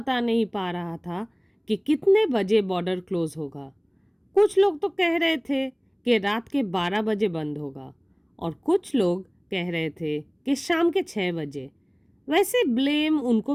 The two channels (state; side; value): identical; both; correlation 1.00